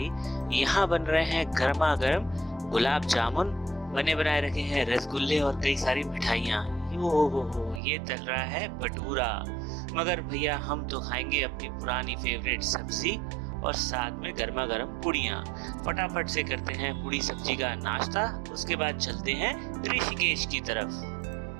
यहाँ बन रहे हैं गर्मा गर्म गुलाब जामुन, बने बनाए रखे हैं रसगुल्ले और कई सारी मिठाइयाँ। ये तल रहा है भटूरा। मगर भैया, हम तो खाएंगे अपनी पुरानी फेवरेट सब्जी और साथ में गर्मा गर्म पुड़ियाँ। फटाफट से करते हैं पूड़ी सब्जी का नाश्ता, उसके बाद चलते हैं ऋषिकेश की तरफ।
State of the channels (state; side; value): drops out; left; at 7.8 s